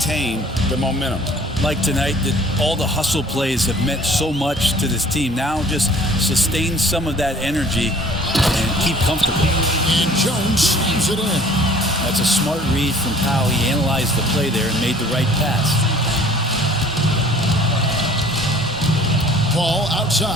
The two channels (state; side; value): normal; both; correlation 0.52